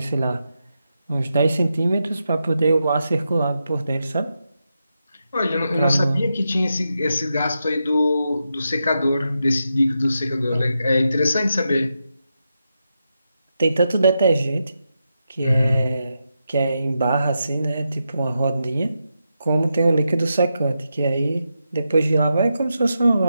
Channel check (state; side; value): inverted; both; correlation -0.87